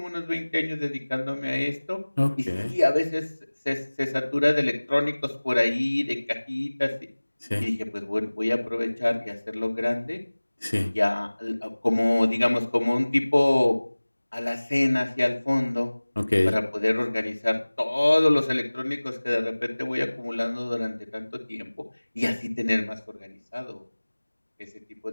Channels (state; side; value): inverted; both; correlation -1.00